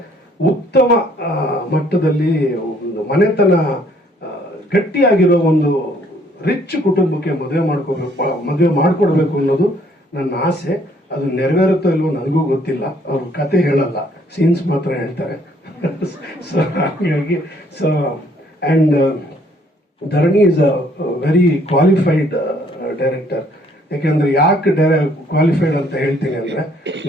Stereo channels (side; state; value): both; normal; correlation 0.63